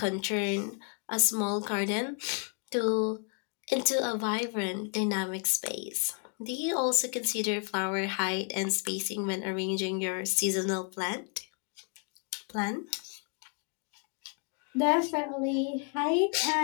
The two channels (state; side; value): quieter; right; 39.1 dB